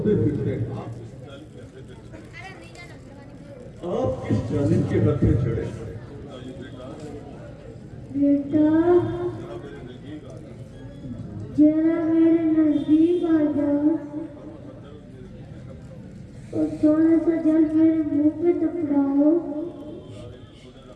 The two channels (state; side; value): identical; both; correlation 1.00